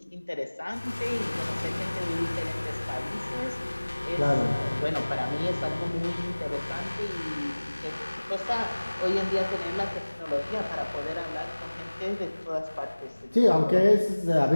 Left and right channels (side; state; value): both; inverted; correlation -1.00